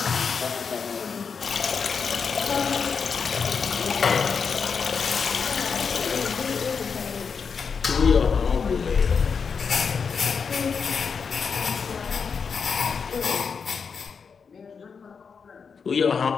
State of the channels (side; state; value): right; quieter; 5.8 dB